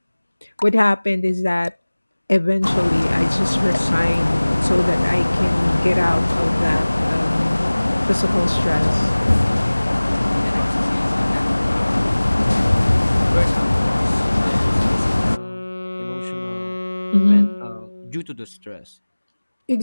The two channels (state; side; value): inverted; both; correlation -1.00